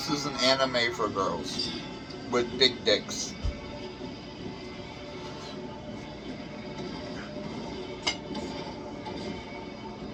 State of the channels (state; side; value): identical; both; correlation 1.00